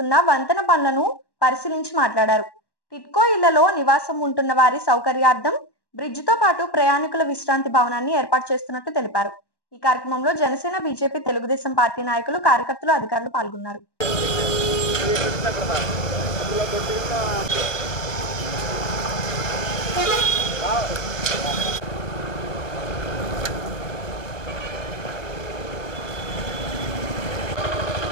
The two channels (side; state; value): right; late; 1.2 ms